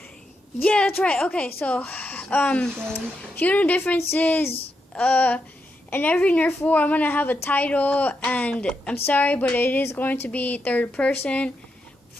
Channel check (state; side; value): normal; both; correlation 0.84